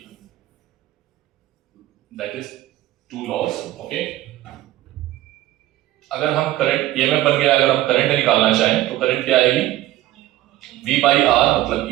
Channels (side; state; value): left; quieter; 15.3 dB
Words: that is two laws, okay. अगर हम करंट ईएमएफ बन गया, अगर हम करंट निकालना चाहें तो करंट क्या आएगी, V by R मतलब